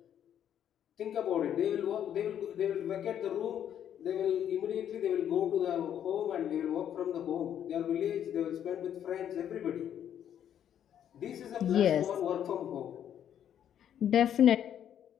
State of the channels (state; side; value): quieter; right; 9.8 dB